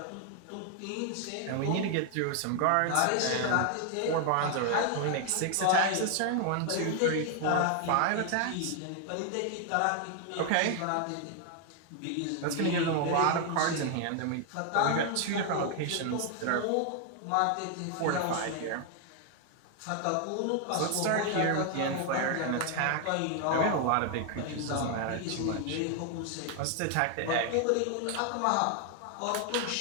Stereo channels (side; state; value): both; different; correlation 0.00